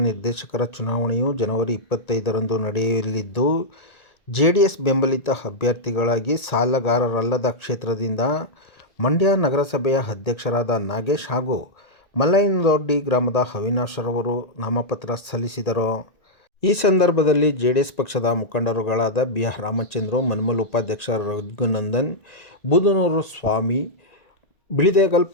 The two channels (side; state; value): right; late; 1.8 ms